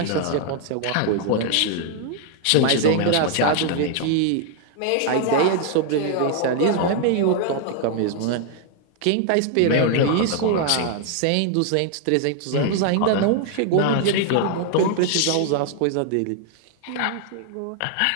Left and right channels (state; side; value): different; both; correlation 0.00